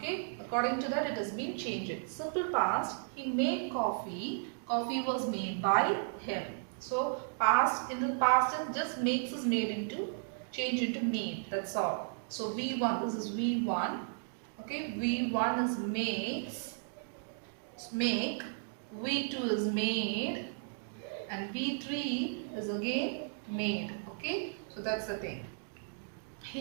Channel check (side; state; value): left; silent; digital silence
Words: according to that it has been changed. Simple past, he made coffee. Coffee was made by him. So past, in the past tense, just makes is made into, change into made. That's all. So V1, this is V1. Okay, V1 is makes, make. V2 is made, and V3 is again made. Okay, so that's the thing.